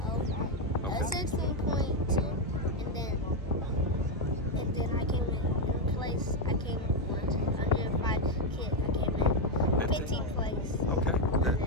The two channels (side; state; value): both; normal; correlation 0.04